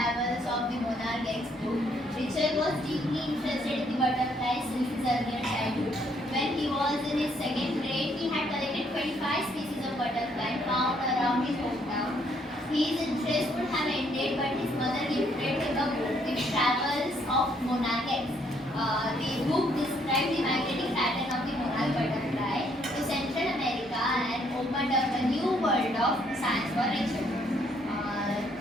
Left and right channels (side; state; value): both; normal; correlation 0.69